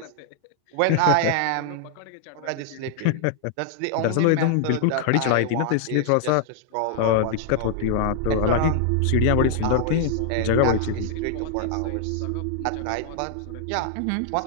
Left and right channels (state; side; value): different; both; correlation 0.00